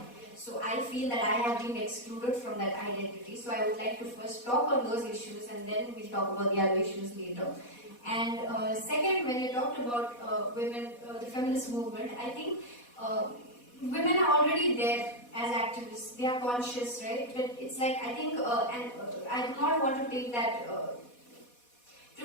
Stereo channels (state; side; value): late; right; 4.1 ms